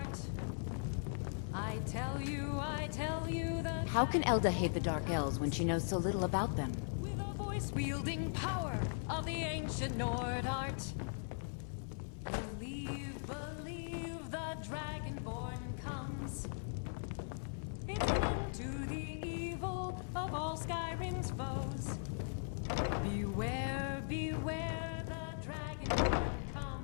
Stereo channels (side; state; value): right; silent; 52 dB below the other